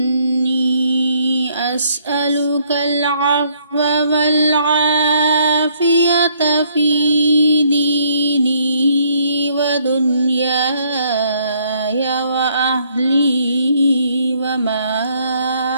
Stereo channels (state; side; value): inverted; both; correlation -0.67